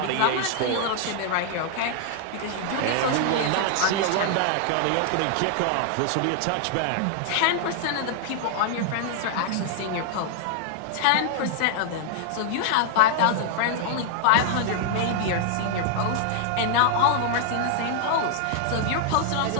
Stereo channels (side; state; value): both; different; correlation 0.00